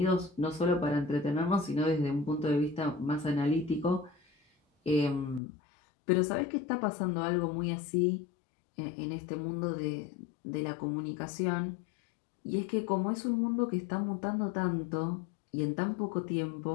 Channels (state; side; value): drops out; right; at 5.4 s